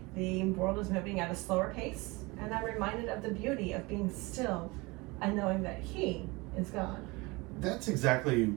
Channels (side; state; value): left; quieter; 24.4 dB